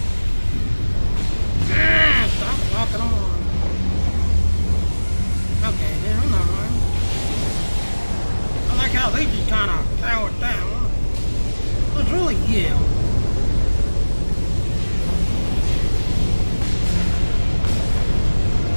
Ah, stop walking on. Okay, then another one. I like how they just kind of powered down. It's really yeah.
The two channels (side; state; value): both; inverted; correlation -1.00